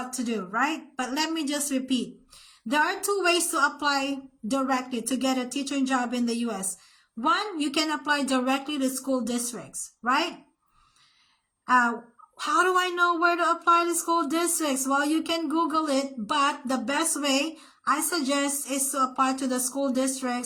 to do, right? But let me just repeat. There are two ways to apply directly to get a teaching job in the U.S. One, you can apply directly to school districts, right? How do I know where to apply to school districts? Well, you can Google it, but the best way I suggest is to apply to the school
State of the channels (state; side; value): identical; both; correlation 1.00